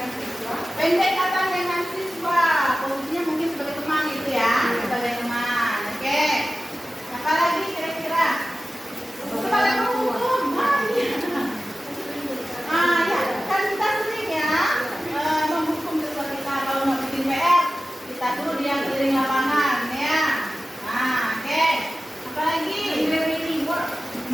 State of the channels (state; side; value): normal; both; correlation 0.95